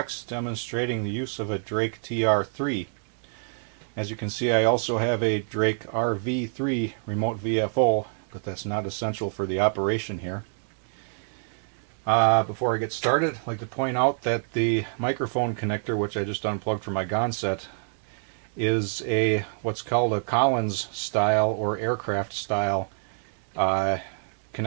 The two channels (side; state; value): left; silent; 60 dB below the other